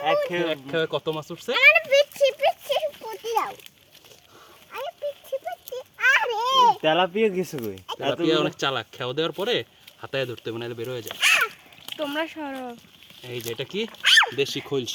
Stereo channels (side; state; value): both; identical; correlation 1.00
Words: এক এক খেয়ে কত মাছ উঠছে। আমারে পিচ্ছি পিচ্ছি বুদ্ধি দাও। আরে পিচ্ছি পিচ্ছি, আরে তেলাপিয়া গেছে কই? তেলাপিয়া অনেক চালাক, খেয়ে দেওয়ার পরে হাতায় ধরতে হবে, নাহলে বের হয়ে যায়। তোমরা সরো। এই যে এটা কি, দেশি